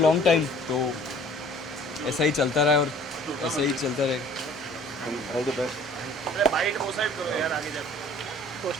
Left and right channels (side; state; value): both; normal; correlation 0.51